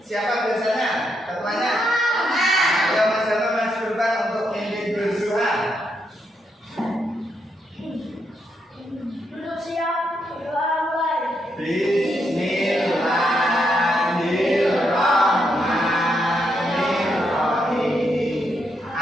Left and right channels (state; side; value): normal; both; correlation 0.80